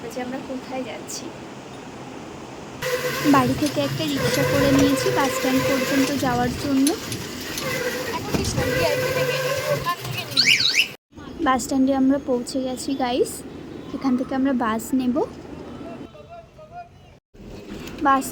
যে আমরা কোথায় যাচ্ছি। বাড়ি থেকে একটা রিক্সা করে নিয়েছি বাস স্ট্যান্ড পর্যন্ত যাওয়ার জন্য। বাস স্ট্যান্ডে আমরা পৌঁছে গেছি গাইস। এখান থেকে আমরা বাস নেব। বাস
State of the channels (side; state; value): both; identical; correlation 1.00